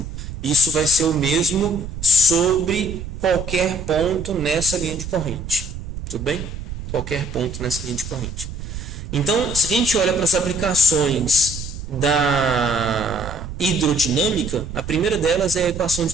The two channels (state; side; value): noise; right; rumble, 9 dB below the sound